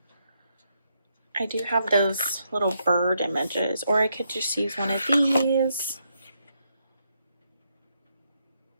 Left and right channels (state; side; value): inverted; both; correlation -0.79